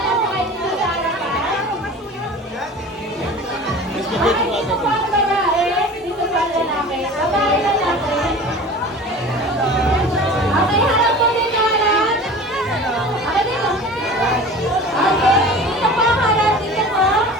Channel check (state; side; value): normal; both; correlation 0.38